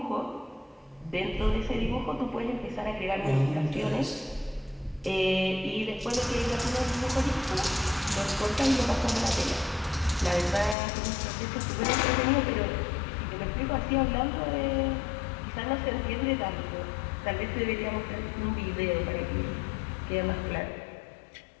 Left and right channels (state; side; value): drops out; right; at 10.8 s